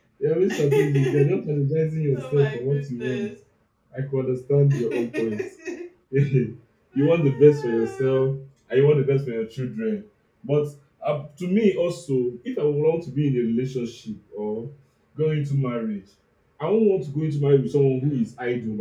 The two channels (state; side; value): identical; both; correlation 1.00